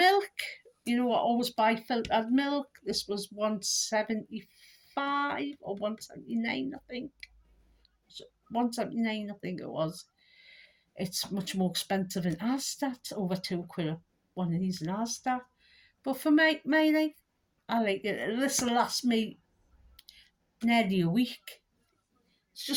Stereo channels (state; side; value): identical; both; correlation 1.00